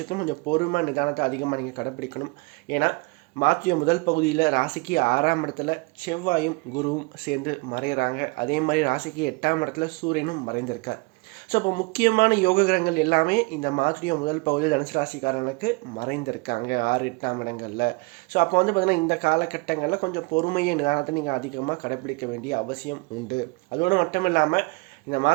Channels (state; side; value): quieter; left; 27.4 dB